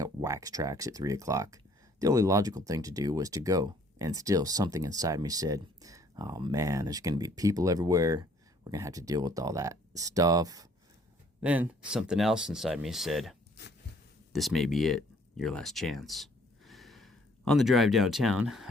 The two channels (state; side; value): normal; both; correlation 0.61